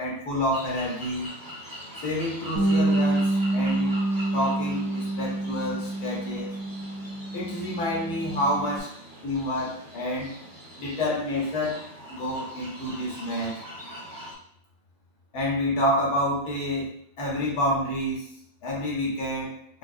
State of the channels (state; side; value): normal; both; correlation 0.26